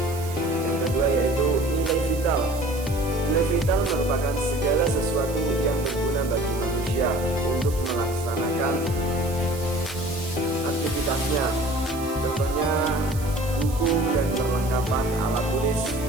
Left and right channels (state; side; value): noise; right; hiss, 15 dB below the sound